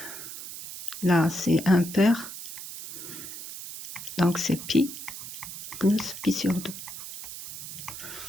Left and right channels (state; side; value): noise; right; hiss, 10 dB below the sound